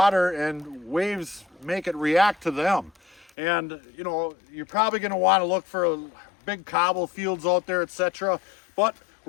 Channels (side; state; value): right; drops out; at 3.3 s